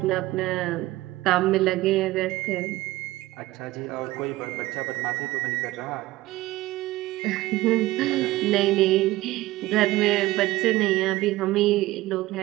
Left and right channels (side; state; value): left; quieter; 17.7 dB